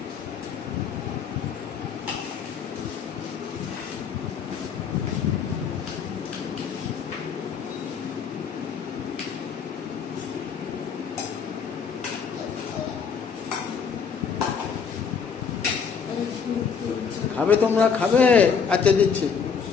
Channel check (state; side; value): quieter; right; 6.4 dB